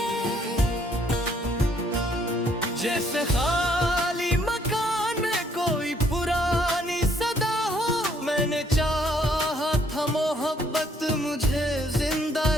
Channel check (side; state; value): both; normal; correlation 0.66